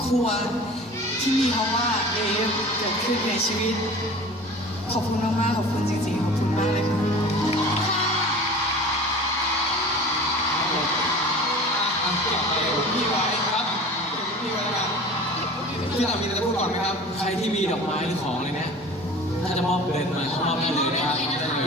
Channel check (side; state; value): both; normal; correlation 0.40